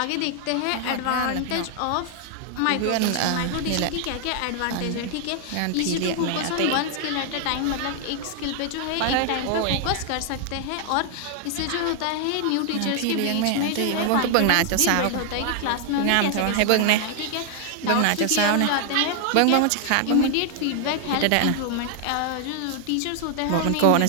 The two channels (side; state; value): both; different; correlation 0.00